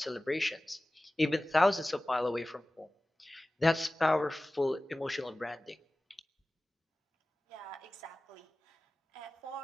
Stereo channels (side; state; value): both; normal; correlation 0.97